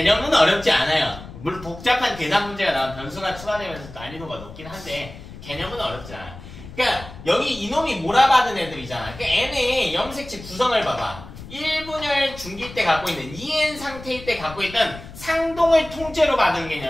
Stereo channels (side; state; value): left; noise; rumble, 15 dB below the sound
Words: 어렵지 않아요. 물론 복잡한 계산 문제가 나오면 변수가 추가되면서 난이도가 높긴 한데 개념은 어렵지 않아. 그러니까 여기 이놈이 몰아받은 애들이잖아. 그러니까 n의 염색체 구성을 봐봐. 1분열 중기 때 갖고 있는 2n 상태일 때 갖고 있던 상동을 통째로 받은